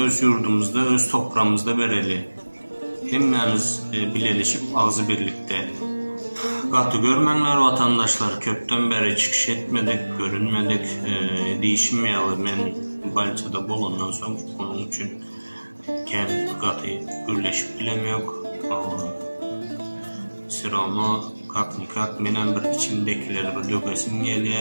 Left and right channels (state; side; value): inverted; both; correlation -1.00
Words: yurdumuzda, öz toprağımızda bereli. Hemmemiz birleşip ağzı birlikte. Katı görmenler vatandaşlar, köpten beri çıkış etmedik, görünmedik, değişmeyeli. Ben Banisa'da bulundan sonra onun için katı birleşip bilemiyor. Sıramı kak benim bir içimdekileri bir dökesim